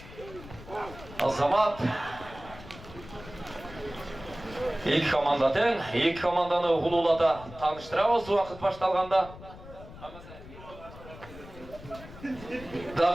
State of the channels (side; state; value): left; noise; rumble, 16 dB below the sound